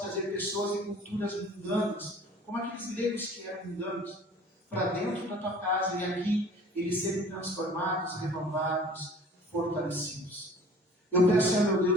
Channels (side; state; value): both; normal; correlation 0.48